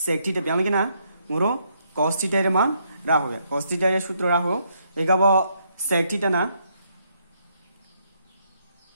theta ব্যাংলে না মোরো cos theta এর মান राहो cos theta এর সূত্র রাহো এগাবো sec theta না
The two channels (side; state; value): both; inverted; correlation -0.74